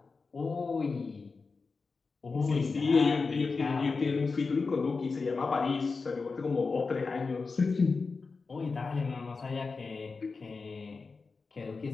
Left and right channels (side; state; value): right; quieter; 4.4 dB